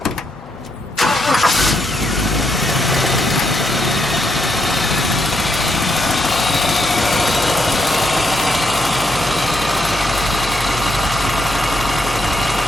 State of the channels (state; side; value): normal; both; correlation 0.77